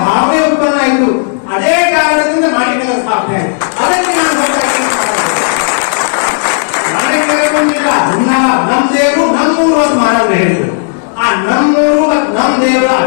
ಉತ್ಪನ್ನ ಆಯ್ತು. ಅದೇ ಕಾರಣದಿಂದ ಮಾಣಿಕ್ಯರ ಸ್ಥಾಪನೆ ಆಯ್ತು. ಅದಕ್ಕೆ ನಾನು ಮಾಣಿಕ್ಯರಿಲ್ಲ ನಮ್ ದೇವರು ನಮ್ಮೂರು ಅಂತ ಮಹಾರಾಜರು ಹೇಳಿದ್ರು. ಆ ನಮ್ಮೂರು ಮತ್ತು ನಮ್ ದೇವರ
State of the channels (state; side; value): silent; right; digital silence